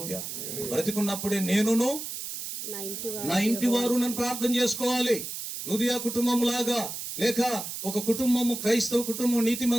బ్రతికున్నప్పుడే నేనును నా ఇంటి వారు నన్ను ప్రార్థన చేసుకోవాలి. నుదియా కుటుంబం లాగా, లేక ఒక కుటుంబము, క్రైస్తవ కుటుంబం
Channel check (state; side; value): noise; right; hiss, 7 dB below the sound